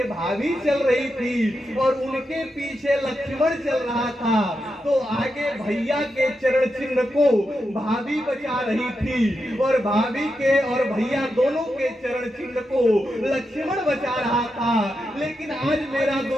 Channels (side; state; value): both; normal; correlation 0.87